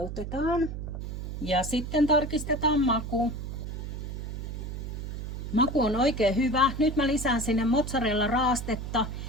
Ja sitten tarkistetaan maku. Maku on oikein hyvä. Nyt mä lisään sinne mozzarella raastetta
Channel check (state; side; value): noise; right; hum, 6 dB below the sound